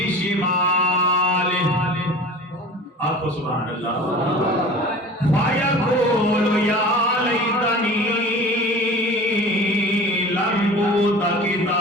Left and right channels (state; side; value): normal; both; correlation 0.39